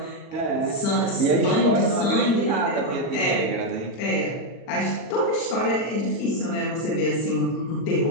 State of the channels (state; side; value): late; right; 40 ms